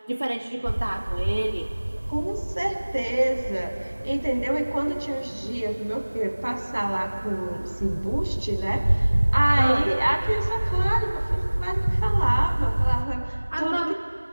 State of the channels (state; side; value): inverted; both; correlation -1.00